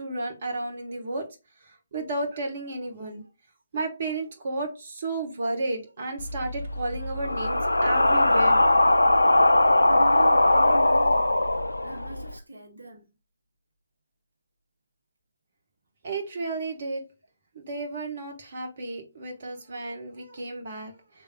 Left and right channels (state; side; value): inverted; both; correlation -0.93